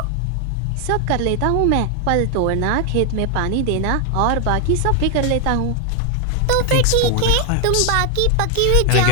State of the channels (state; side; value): different; both; correlation 0.00